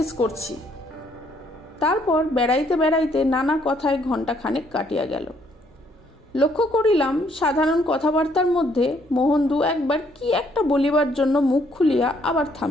করছি। তারপর বেড়াইতে বেড়াইতে নানা কথায় ঘণ্টাখানেক কাটিয়া গেল। লক্ষ্য করিলাম সাধারণ কথাবার্তার মধ্যে মোহন 2-1 কি একটা বলিবার জন্য মুখ খুলিয়া আবার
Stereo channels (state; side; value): normal; both; correlation 0.68